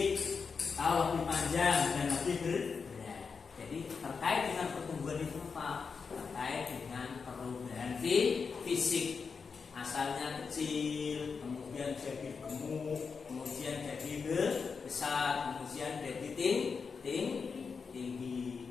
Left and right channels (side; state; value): right; quieter; 5.4 dB